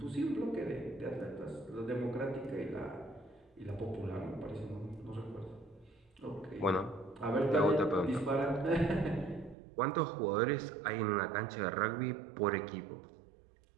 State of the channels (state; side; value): drops out; left; at 9.6 s